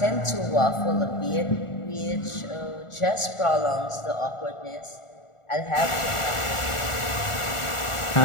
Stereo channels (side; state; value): right; late; 1.4 ms